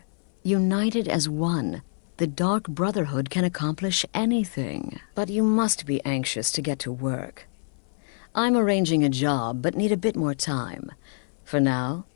united as one, the Dark Brotherhood can accomplish anything. But you must be anxious to get to work. I'm arranging a job, but need a bit more time. For now,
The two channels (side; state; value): right; silent; 61 dB below the other